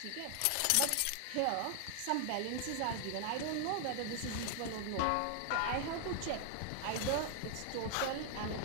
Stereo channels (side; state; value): both; different; correlation 0.00